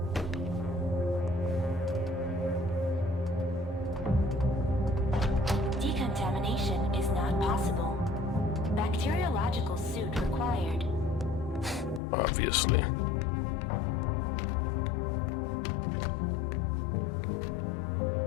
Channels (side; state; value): right; drops out; at 12.0 s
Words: Decontamination is not possible. Bacteriological suit required. Obviously.